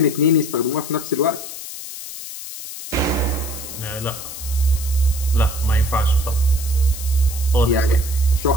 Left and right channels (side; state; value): left; noise; hiss, 10 dB below the sound